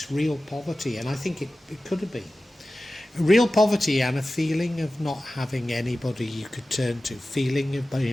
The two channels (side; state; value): both; normal; correlation 0.95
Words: real poverty, and I think it could have been. Real poverty and a feeling of not having anybody you could turn to, feeling of